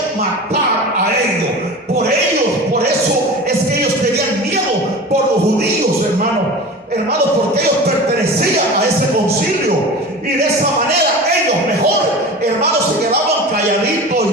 matar a ellos. Por eso es que ellos tenían miedo por los judíos, hermanos, porque ellos pertenecían a ese concilio. Y de esa manera ellos mejor, hermanos, se quedaban calladitos y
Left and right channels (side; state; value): both; normal; correlation 0.34